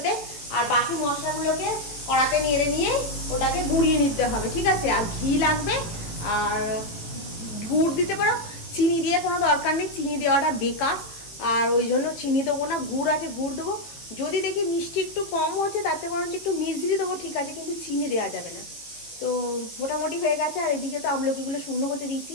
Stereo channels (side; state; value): right; late; 18 ms